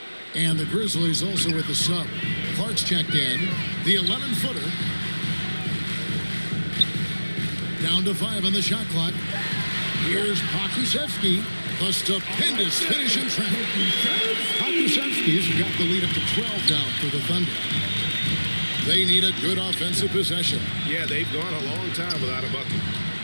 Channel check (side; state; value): both; inverted; correlation -1.00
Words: And the Grizzlies also with the sub. Clark's checked in. The 11-footer. Down to 5 on the shot clock. Here's Pokusevski. The stupendous finish in trap. Pokusevski's got the lead up to 12 down for the Thunder. They need a good offensive possession. Yeah, they've gone a long time without a bucket.